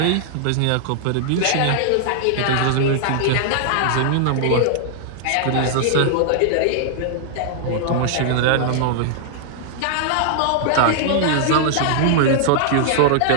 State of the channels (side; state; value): both; different; correlation -0.01